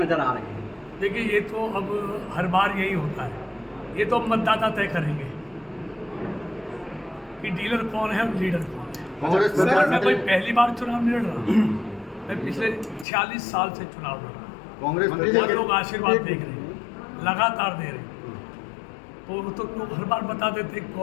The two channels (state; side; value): drops out; right; at 13.1 s